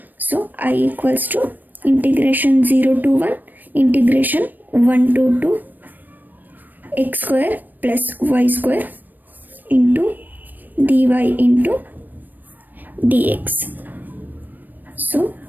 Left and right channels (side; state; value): left; late; 0.089 ms